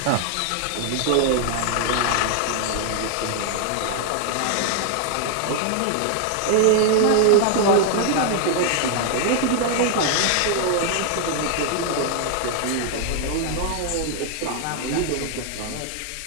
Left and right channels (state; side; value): different; both; correlation 0.00